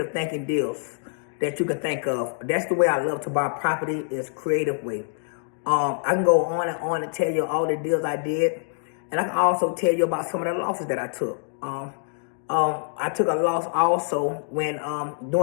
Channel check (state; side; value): silent; right; digital silence